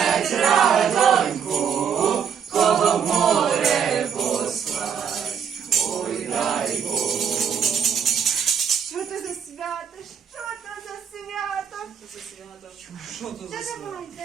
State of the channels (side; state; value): left; quieter; 7.4 dB